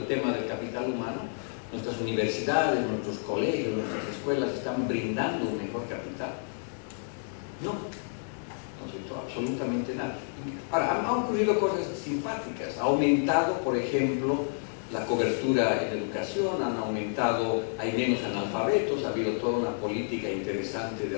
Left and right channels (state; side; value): silent; right; digital silence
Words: tema del capital humano. Nuestras universidades, nuestros colegios, nuestras escuelas están brindando un mejor capital. No, no se hizo absolutamente nada. Ahora, han ocurrido cosas simpáticas. Ha aumentado, por ejemplo, la cobertura en educación, han aumentado, hay menos analfabetos, ha habido toda una política interesante de